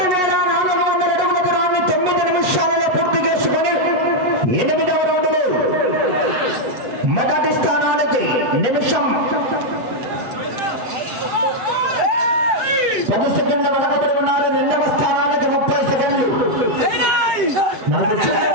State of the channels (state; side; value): late; left; 8.2 ms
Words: అడుగుల దూరాన్ని 9 నిమిషాలలో పూర్తి చేసుకొని 8వ రౌండ్లో మొదటి స్థానానికి నిమిషం 10 సెకండ్ల వెనకబడి ఉన్నారు. 2వ స్థానానికి 30 సెకండ్లు. మనకు